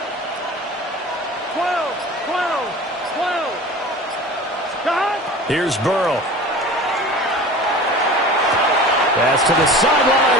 12, 12, 12. Stop. Here's Burrow. Pass to the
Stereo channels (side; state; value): both; normal; correlation 0.38